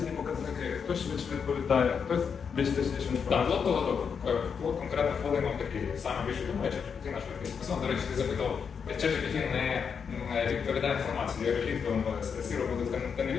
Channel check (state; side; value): quieter; right; 6.5 dB